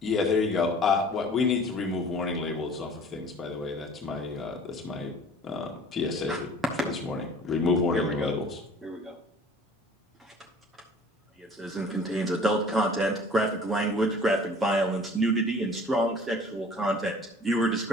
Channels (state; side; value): normal; both; correlation 0.47